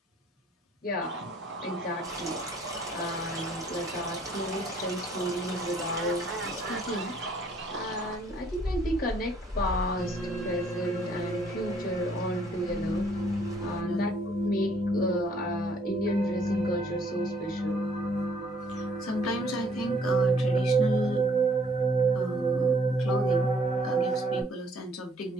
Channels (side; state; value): both; normal; correlation 0.62